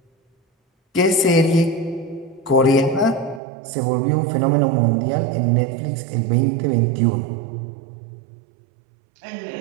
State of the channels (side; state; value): left; drops out; at 3.4 s